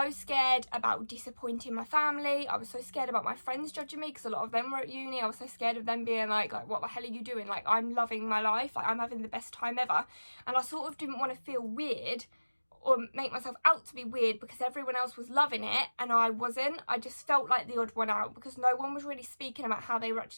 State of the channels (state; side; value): inverted; both; correlation -1.00